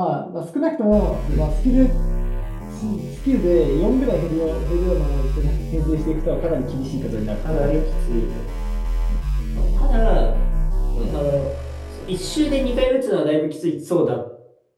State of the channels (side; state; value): both; identical; correlation 1.00